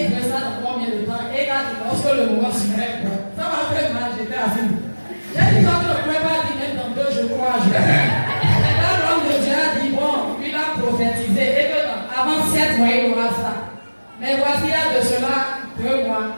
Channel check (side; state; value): both; inverted; correlation -1.00